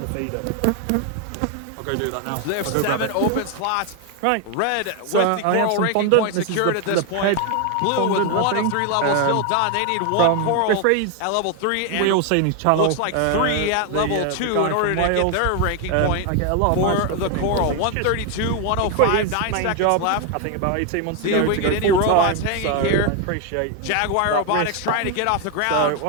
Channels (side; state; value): both; different; correlation 0.01